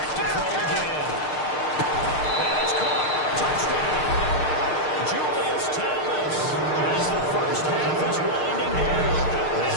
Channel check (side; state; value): right; late; 6.6 ms